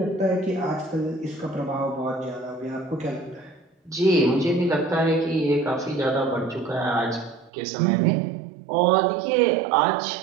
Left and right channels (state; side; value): drops out; left; at 7.5 s